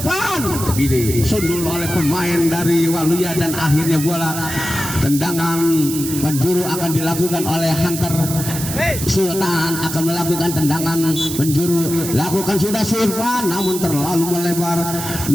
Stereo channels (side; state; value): right; noise; hiss, 7 dB below the sound